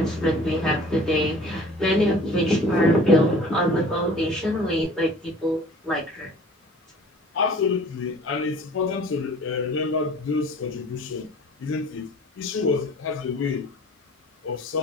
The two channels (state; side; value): normal; both; correlation 0.47